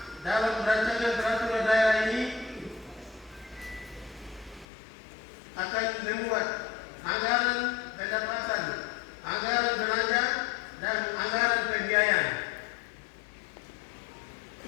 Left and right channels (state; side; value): drops out; right; at 4.7 s